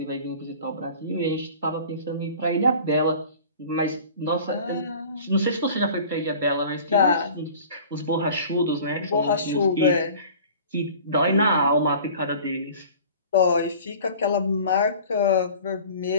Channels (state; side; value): inverted; both; correlation -0.43